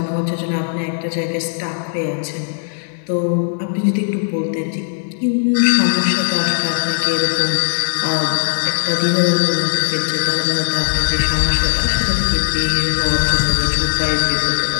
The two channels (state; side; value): silent; right; 67 dB below the other